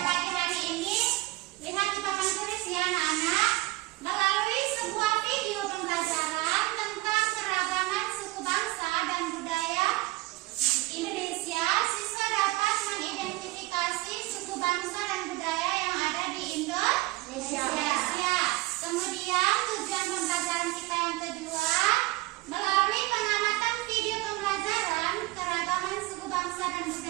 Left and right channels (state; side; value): quieter; left; 20.0 dB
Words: pagi hari ini, lihat di papan tulis ya anak-anak. Melalui sebuah video pembelajaran tentang keragaman suku bangsa dan budaya Indonesia, siswa dapat mengidentifikasi suku bangsa dan budaya yang ada di Indonesia. Kemudian tujuan pembelajaran kita yang kedua, melalui pengamatan video pembelajaran keragaman suku bangsa dan